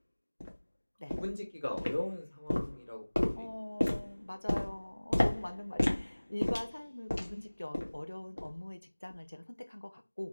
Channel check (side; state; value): both; inverted; correlation -1.00